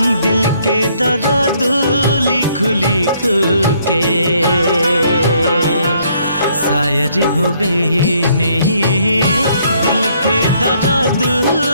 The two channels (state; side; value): inverted; both; correlation -0.67